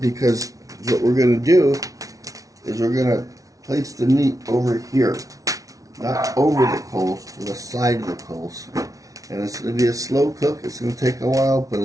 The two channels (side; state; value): left; late; 0.17 ms